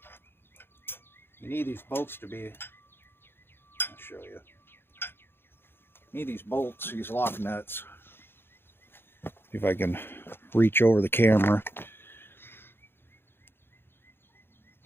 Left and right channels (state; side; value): late; right; 0.11 ms